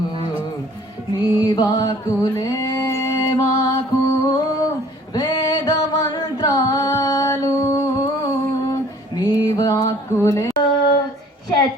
నీ వాకులే మాకు వేద మంత్రాలు, నీ వాకులే.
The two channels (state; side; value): normal; both; correlation 0.54